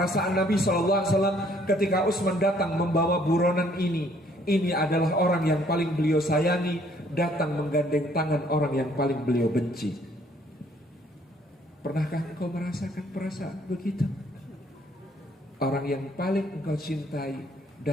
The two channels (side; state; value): both; normal; correlation 0.63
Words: Nabi SAW ketika Utsman datang membawa buronan ini. Ini adalah orang yang paling beliau sayangi, datang menggandeng tangan orang yang paling beliau benci. Pernahkah engkau merasakan perasaan begitu? Orang yang paling engkau cintai